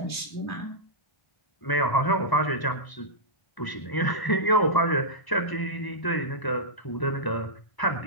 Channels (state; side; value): late; right; 1.0 ms